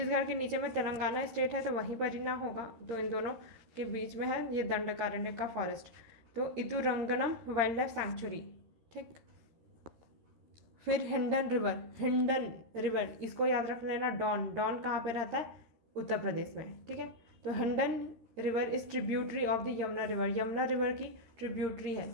के नीचे में तेलंगाना स्टेट है, तो वहीं पर ही ना होगा, तो इन दोनों के बीच में है ये दंडकारण्य का फॉरेस्ट। तो इदुरंगनम वाइल्ड लाइफ सेंचुरी, ठीक। फिर हिंडन रिवर इसको याद रख लेना। डॉन कहाँ पे रहता है? उत्तर प्रदेश में, ठीक है। तो Hindon river is tributary of the Yamuna river की ट्रिब्यूटरी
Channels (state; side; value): late; left; 13 ms